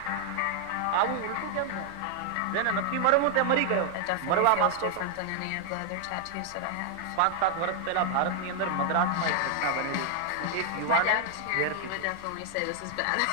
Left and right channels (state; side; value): different; both; correlation 0.00